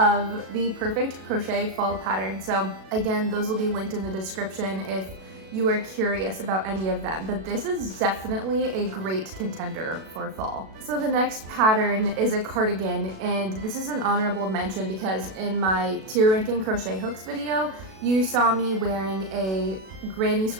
the perfect crochet fall pattern. So again, those will be linked in the description if you are curious about any of them, but this is definitely a great contender for fall. So the next pattern is a cardigan, and this is an honorable mention because in my tier ranking crochet hooks video, you saw me wearing a granny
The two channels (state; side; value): late; left; 37 ms